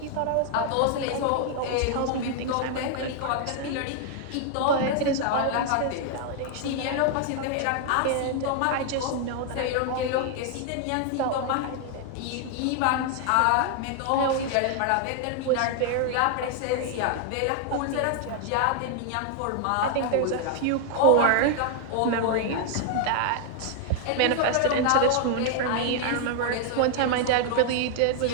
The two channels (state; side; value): different; both; correlation 0.00